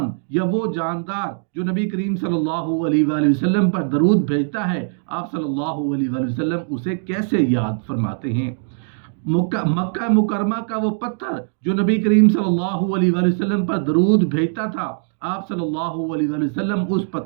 یا وہ جاندار جو نبی کریم صلی اللہ علیہ وآلہ وسلم پر درود بھیجتا ہے، آپ صلی اللہ علیہ وآلہ وسلم اسے کیسے یاد فرماتے ہیں؟ مکہ مکرمہ کا وہ پتھر جو نبی کریم صلی اللہ علیہ وآلہ وسلم پر درود بھیجتا تھا، آپ صلی اللہ علیہ وآلہ وسلم اس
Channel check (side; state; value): left; silent; digital silence